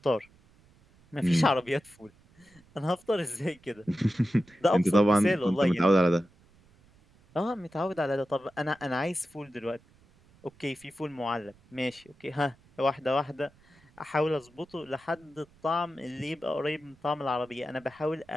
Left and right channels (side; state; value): right; noise; rumble, 29 dB below the sound